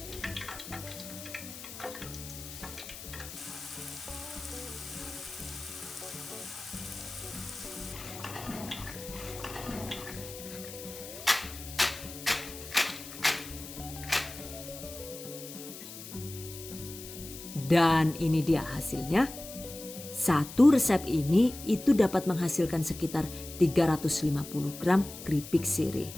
Dan ini dia hasilnya. Satu resep ini itu dapat menghasilkan sekitar 350 gram keripik sirih.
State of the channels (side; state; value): left; noise; hiss, 12 dB below the sound